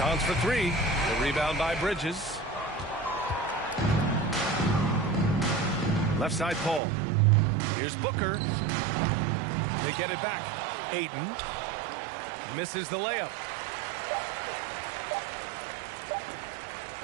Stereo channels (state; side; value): drops out; left; at 6.8 s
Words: for 3. The rebound by Bridges. Left side Paul. Here's Booker. They get it back. Ayton misses the layup.